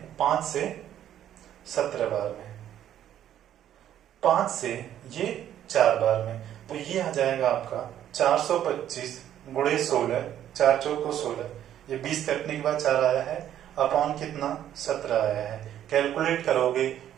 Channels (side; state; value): left; quieter; 11.0 dB